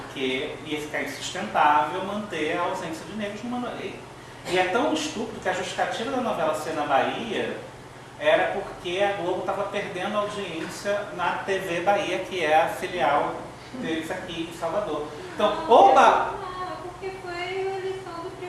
ia ficar insustentável manter a ausência de negros numa novela. E é tão estúpido que a justificativa da novela ser na Bahia era porque a Globo estava perdendo audiência na TV Bahia, que é a filial deles aqui em Salvador. Então, porque foi a eleição do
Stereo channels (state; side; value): identical; both; correlation 1.00